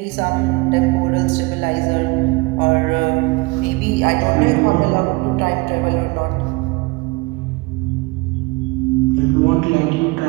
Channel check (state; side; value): quieter; left; 25.1 dB